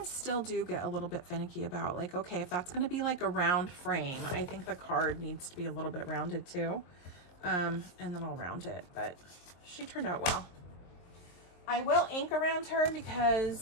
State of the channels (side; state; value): right; late; 23 ms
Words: still do get a little bit finicky about, like, okay, if that's going to be like a round frame, I think the card needs to be a little bit rounded too. And then I'll round it, but she turned out well. I will ink around her